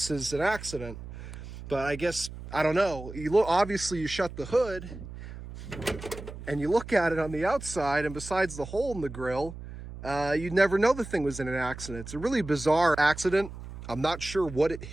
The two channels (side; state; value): right; noise; hum, 12 dB below the sound